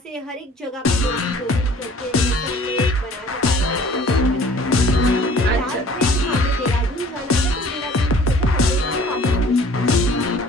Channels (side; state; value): both; normal; correlation 0.51